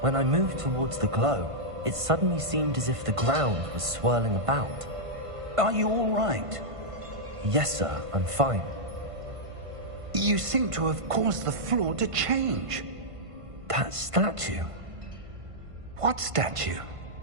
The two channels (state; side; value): late; left; 1.5 ms